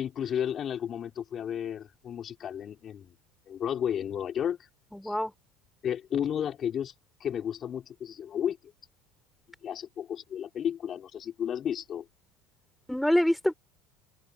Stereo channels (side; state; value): right; quieter; 4.8 dB